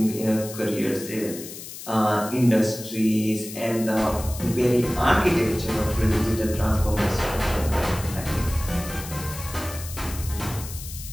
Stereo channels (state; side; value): noise; left; hiss, 12 dB below the sound